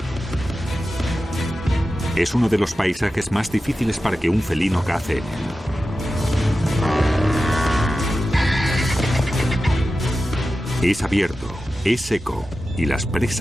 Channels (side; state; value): both; normal; correlation 0.93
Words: Es uno de los paisajes más difíciles para que un felino cace en él. Es abierto, es seco y las